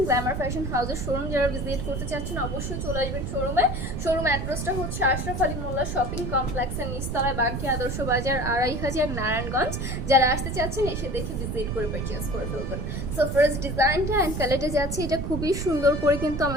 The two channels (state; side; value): noise; right; rumble, 3 dB below the sound